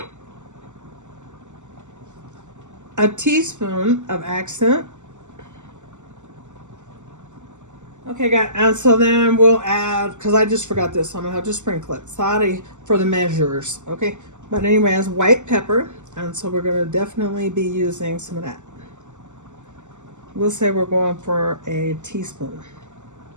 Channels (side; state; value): left; late; 0.84 ms